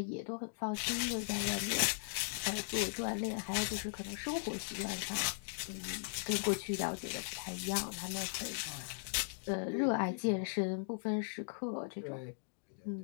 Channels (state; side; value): silent; right; digital silence